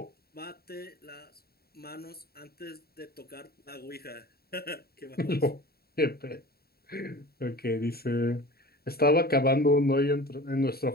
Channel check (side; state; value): right; late; 0.45 ms